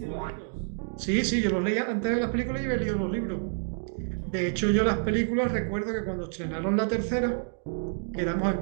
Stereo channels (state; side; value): silent; left; 59 dB below the other